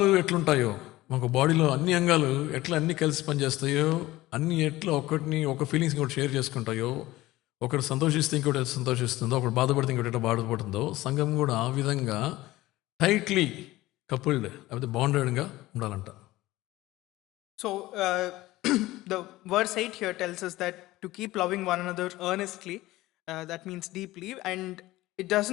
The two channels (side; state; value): right; quieter; 17.6 dB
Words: ఎట్లుంటాయో మాకు బాడీలో అన్ని అంగాలు ఎట్లా అన్ని కలిసి పనిచేస్తాయో, అన్ని ఎట్లా ఒక ఫీలింగ్స్ ఇంకోటి షేర్ చేసుకుంటాయో, ఒకటి సంతోషిస్తే ఇంకోటి సంతోషిస్తుందో, ఒకటి బాధపడితే ఇంకోటి ఎట్లా బాధపడుతుందో, సంఘం కూడా ఆ విధంగా టైట్లీ కపుల్డ్ లేకపోతే బాండెడ్గా ఉండాలంట. So the verse 8 here tells us that to keep loving one another earnestly, that means deeply, and it